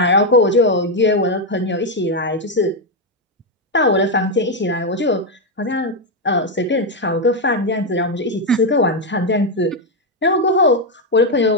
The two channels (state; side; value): normal; both; correlation 0.03